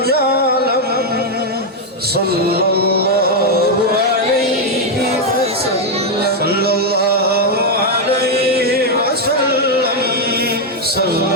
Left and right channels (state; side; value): normal; both; correlation 0.01